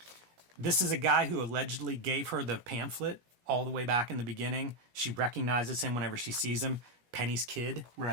This is a guy who allegedly gave her the pamphlet all the way back in the beginning. She recognizes him whenever she sees him. Penny's kid.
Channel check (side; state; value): left; late; 17 ms